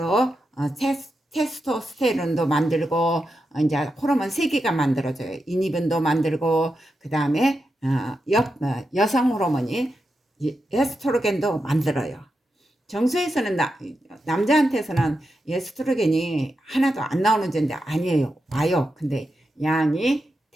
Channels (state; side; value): normal; both; correlation 0.87